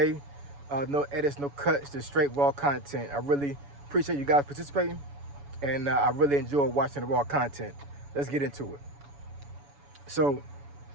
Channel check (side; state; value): left; late; 7.0 ms